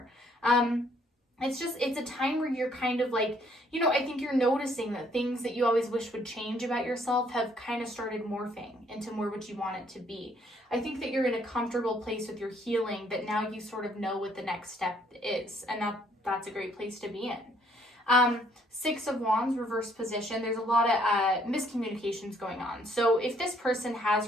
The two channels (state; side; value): normal; both; correlation 0.66